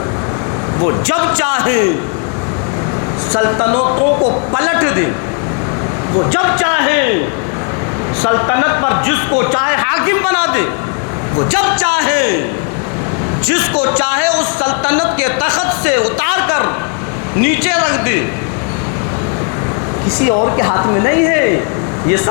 وہ جب چاہے سلطنتوں کو پلٹ دے, وہ جب چاہے سلطنت پر جس کو چاہے حاکم بنا دے, وہ جب چاہے جس کو چاہے اس سلطنت کے تخت سے اتار کر نیچے رکھ دے. کسی اور کے ہاتھ میں نہیں ہے, یہ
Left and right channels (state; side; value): quieter; right; 39.6 dB